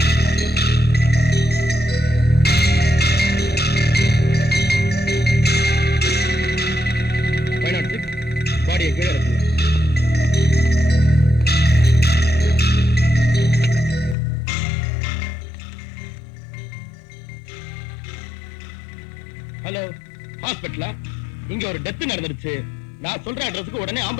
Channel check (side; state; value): right; drops out; at 14.2 s